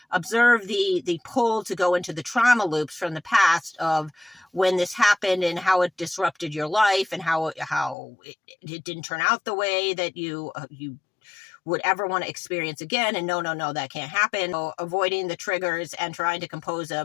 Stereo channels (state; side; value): drops out; right; at 8.0 s